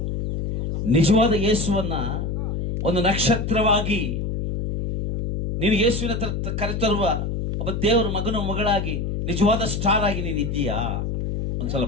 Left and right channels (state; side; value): noise; left; hum, 2 dB below the sound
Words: ನಿಜವಾದ ಯೇಸುವನ್ನ ಒಂದು ನಕ್ಷತ್ರವಾಗಿ ನೀನು ಯೇಸುವಿನ ಕರೆತರುವ ಒಬ್ಬ ದೇವರ ಮಗನ ಮಗಳಾಗಿ, ನಿಜವಾದ ಸ್ಟಾರ್ ಆಗಿ ನೀನು ಇದ್ದೀಯಾ?